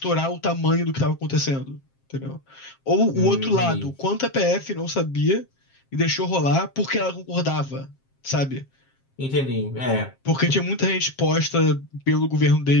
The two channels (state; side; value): late; right; 7.5 ms